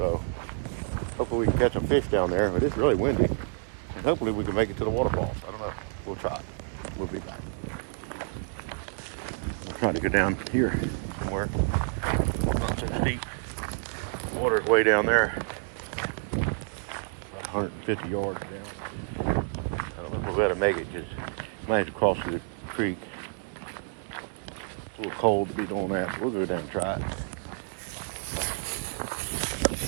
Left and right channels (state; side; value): silent; left; digital silence